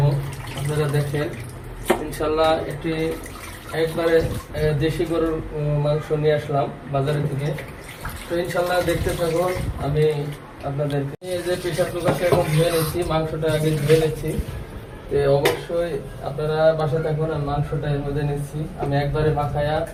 আপনারা দেখেন। ইনশাল্লাহ একবারে দেশি গরুর মাংস নিয়ে আসলাম বাজারে থেকে। তো ইনশাল্লাহ দেখতে থাকুন। আমি আপনাদেরকে এই যে প্রেশার কুকারটা এখন ধুয়ে নিচ্ছি, মাংসটা আগে ধুয়ে নিচ্ছি। তো অবশ্যই আপনারা বাসায় থাকুন। আমি মাংসটা এর মধ্যে নিচ্ছি, আমি একবারে মাখায়া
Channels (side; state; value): both; identical; correlation 1.00